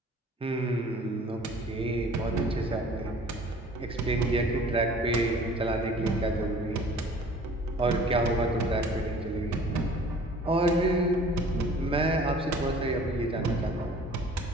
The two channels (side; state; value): both; normal; correlation 0.49